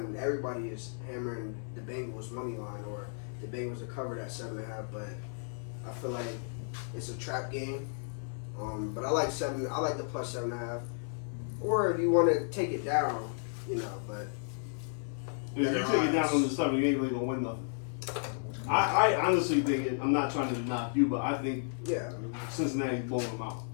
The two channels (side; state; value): right; silent; 56 dB below the other